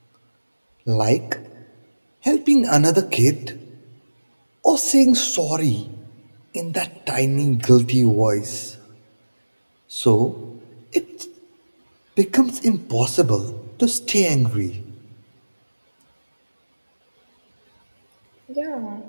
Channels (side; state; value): both; inverted; correlation -1.00